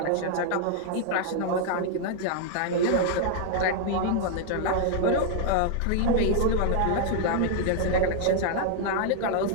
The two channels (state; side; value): different; both; correlation -0.01